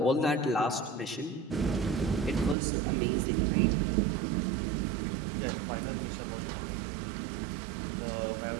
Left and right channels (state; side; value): drops out; left; at 2.6 s